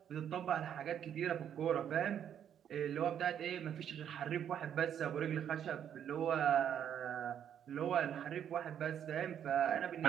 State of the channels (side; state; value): left; quieter; 9.3 dB